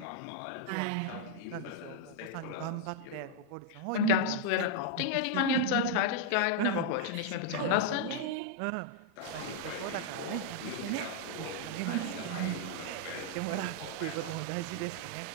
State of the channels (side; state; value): both; different; correlation 0.00